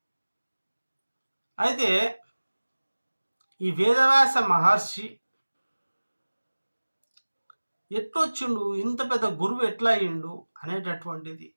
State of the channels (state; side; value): inverted; both; correlation -1.00